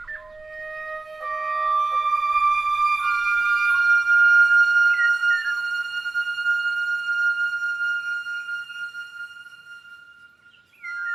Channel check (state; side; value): quieter; left; 3.6 dB